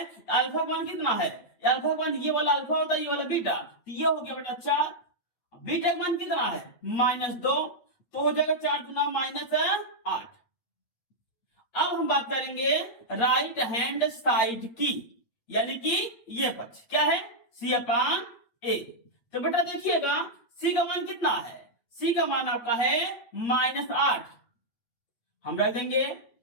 अल्फा मान कितना है? अल्फा मान ये वाला अल्फा होता है, ये वाला बीटा, तो ये हो गया बेटा 4। बीटा मान कितना है? -2, तो हो जाएगा 4 गुना -8। अब हम बात करेंगे राइट हैंड साइड की, यानी कि ये पक्ष क्या है? सी अपान ए। तो बेटा देखिएगा सी का मान कितना है? सी का मान आपका है -8, हम रख देंगे।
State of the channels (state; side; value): late; right; 8.5 ms